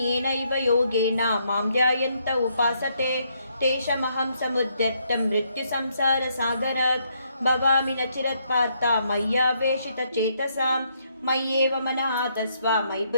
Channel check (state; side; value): inverted; both; correlation -0.73